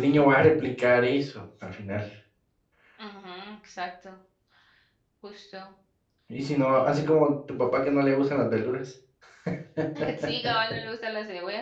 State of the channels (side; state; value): both; identical; correlation 1.00